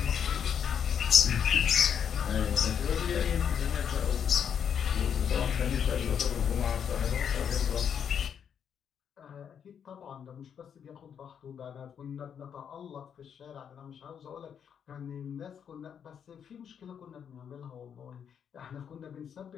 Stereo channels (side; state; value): right; quieter; 8.0 dB